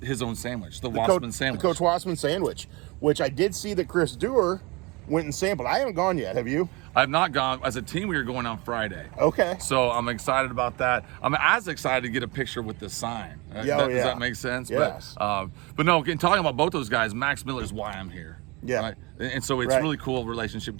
his own sandwich, the Wassman sandwich. The Coach Wassman sandwich, which I did see that Chris Dewar went and sampled. I haven't gone yet. Have you? I've not gone. As a team, we were going on Friday. Okay. So I'm excited about that. I'm as excited to get a picture with the sign. Yeah, Does that make sense? Yes. But no, in talking about both those guys, Max Miller is why I'm here. Yeah. Right? And so it's Right. really cool relationship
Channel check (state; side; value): quieter; left; 25.5 dB